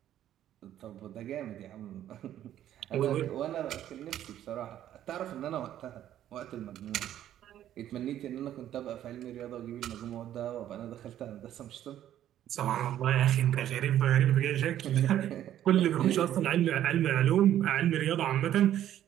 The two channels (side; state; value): left; quieter; 11.7 dB